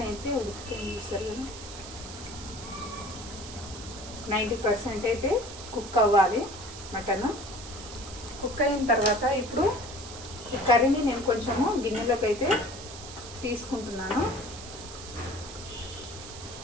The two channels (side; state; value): right; noise; hiss, 13 dB below the sound